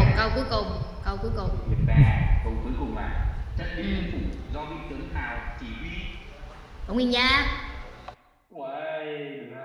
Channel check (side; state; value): both; identical; correlation 1.00